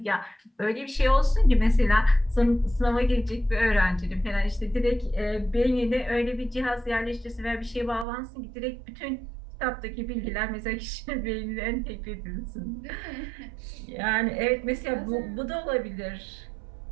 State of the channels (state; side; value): drops out; left; at 8.1 s